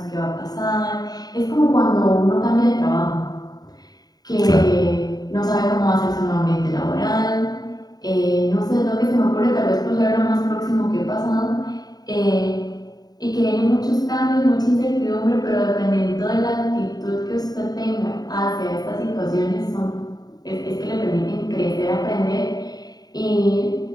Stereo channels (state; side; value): late; right; 0.19 ms